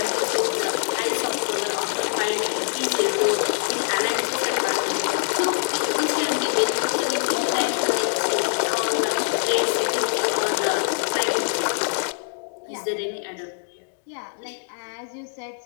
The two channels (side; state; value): right; silent; digital silence